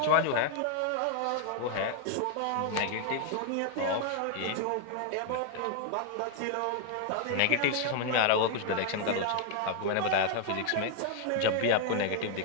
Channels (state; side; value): different; both; correlation 0.00